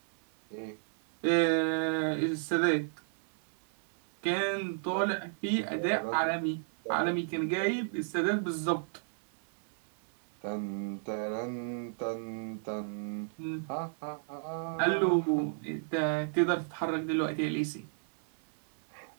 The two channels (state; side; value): silent; left; 56 dB below the other